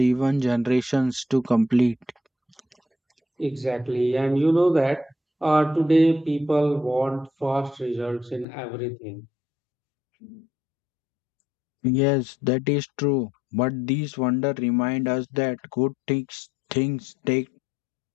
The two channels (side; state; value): right; drops out; at 8.5 s